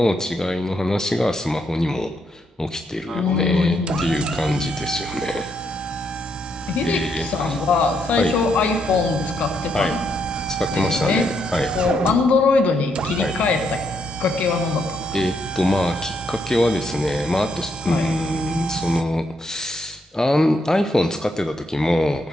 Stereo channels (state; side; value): normal; both; correlation 0.76